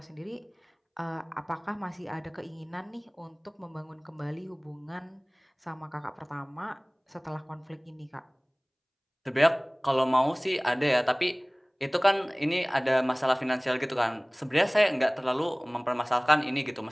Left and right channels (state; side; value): identical; both; correlation 1.00